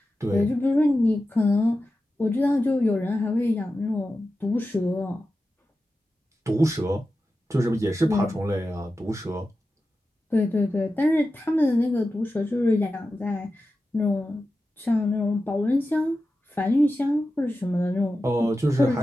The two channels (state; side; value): normal; both; correlation 0.92